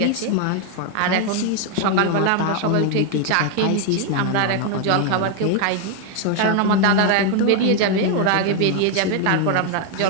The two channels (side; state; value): both; different; correlation 0.01